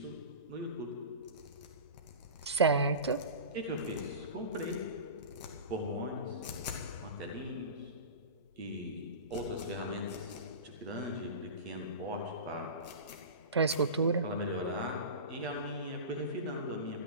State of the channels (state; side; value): inverted; both; correlation -0.31